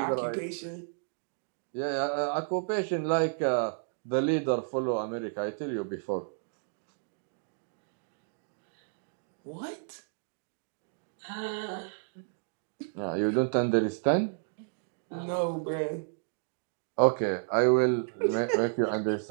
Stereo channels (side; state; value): left; silent; digital silence